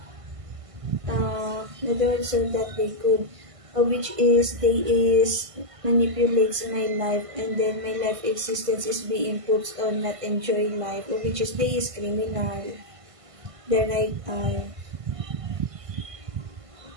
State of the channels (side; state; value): left; late; 1.5 ms